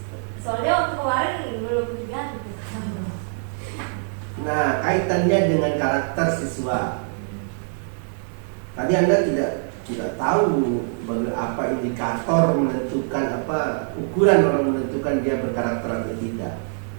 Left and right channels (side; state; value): left; silent; 63 dB below the other